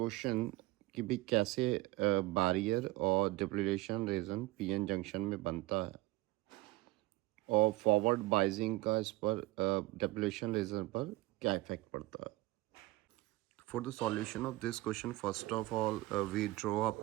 कि भी कैसे barrier और depletion region p-n junction में बनता है और forward biasing का इस पर depletion region पर क्या effect पड़ता है. For the solution of this question, first of all, we draw a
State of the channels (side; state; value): left; quieter; 19.5 dB